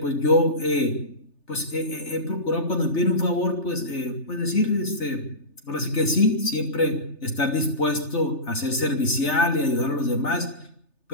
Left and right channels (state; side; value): late; right; 3.3 ms